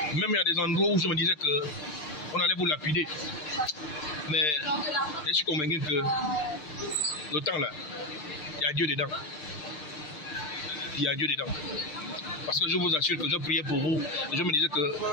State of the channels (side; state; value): right; late; 6.6 ms